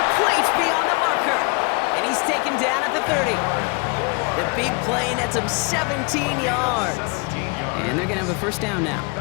beyond the marker. And he's taken down at the 30. The big play nets him 17 yards. And they're going to have a first down now.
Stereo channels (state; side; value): quieter; right; 30.9 dB